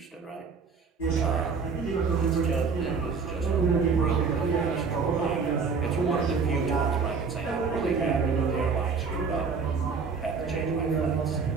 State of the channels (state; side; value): quieter; left; 5.2 dB